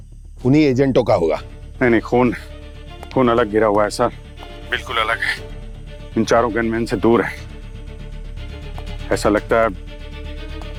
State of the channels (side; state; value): both; identical; correlation 1.00